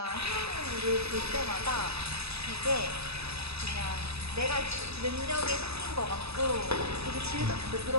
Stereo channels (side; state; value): left; late; 0.78 ms